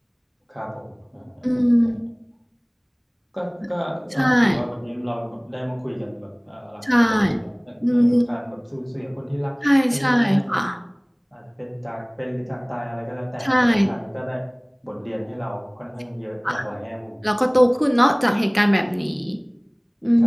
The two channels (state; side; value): identical; both; correlation 1.00